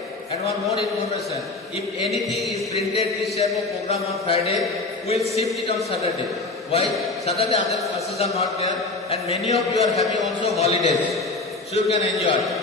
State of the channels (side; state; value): right; quieter; 3.4 dB